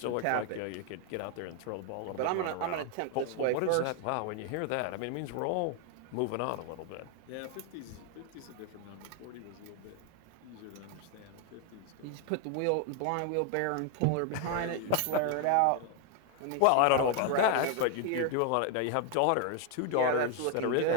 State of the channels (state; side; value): different; both; correlation 0.00